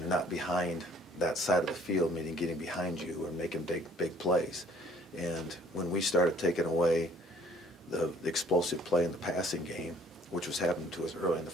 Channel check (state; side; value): normal; both; correlation 0.57